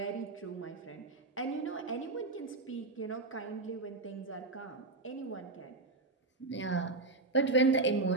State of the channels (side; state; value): left; quieter; 3.3 dB